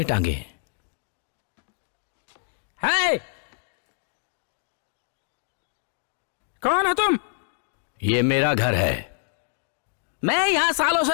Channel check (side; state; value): right; silent; digital silence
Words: टांगे हैं? है कौन हो तुम? ये मेरा घर है। मैं यहाँ सालों से